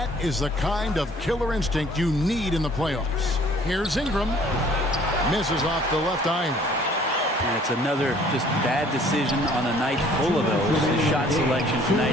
is the kind of killer instinct you need in the playoffs. Here's Ingram. Misses off the left iron. And it's another just bad decision on a night full of those. His shot selection tonight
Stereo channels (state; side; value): normal; both; correlation 0.56